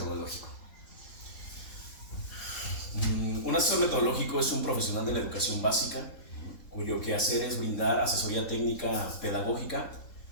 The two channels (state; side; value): late; right; 3.7 ms